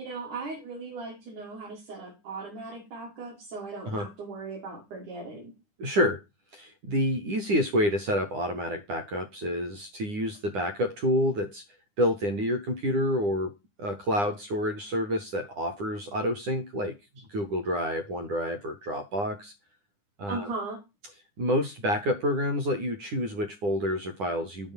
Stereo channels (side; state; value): left; late; 9.9 ms